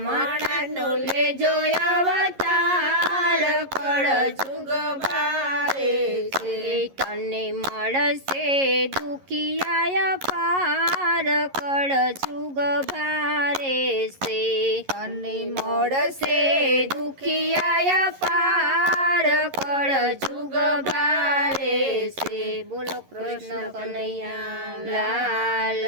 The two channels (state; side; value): late; left; 11 ms